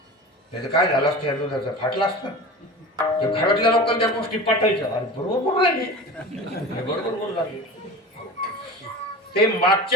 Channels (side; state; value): both; normal; correlation 0.33